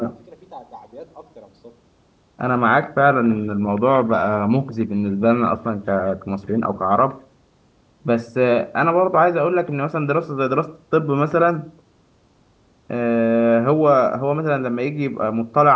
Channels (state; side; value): identical; both; correlation 1.00